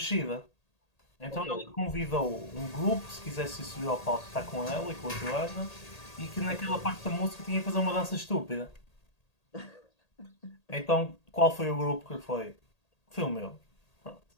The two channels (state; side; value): late; right; 1.8 ms